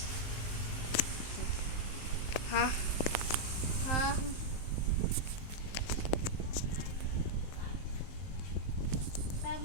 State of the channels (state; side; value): late; right; 19 ms